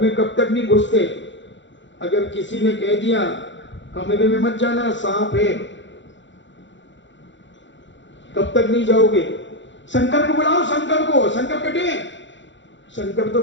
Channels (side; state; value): right; late; 0.54 ms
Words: में कब तक नहीं घुसते? अगर किसी ने कह दिया कमरे में मत जाना, सांप है, कब तक नहीं जाओगे? शंकर को बुलाओ, शंकर को, शंकर कटे। शंकर तो